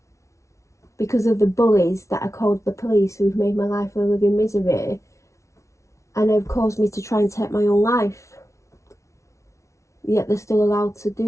because of the bullies that I called the police, who've made my life a living misery and have caused me to try and take my own life. Yet they're still allowed to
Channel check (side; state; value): right; late; 0.14 ms